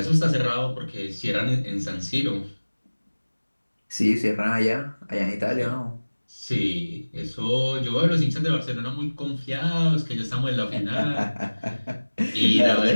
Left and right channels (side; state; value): both; inverted; correlation -1.00